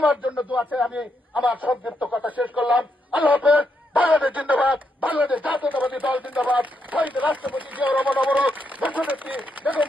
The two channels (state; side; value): normal; both; correlation 0.80